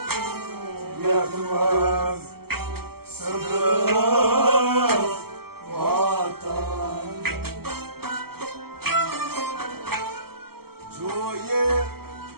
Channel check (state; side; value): late; left; 0.95 ms